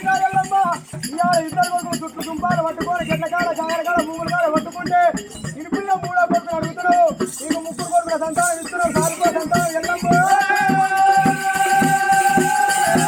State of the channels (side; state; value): both; identical; correlation 1.00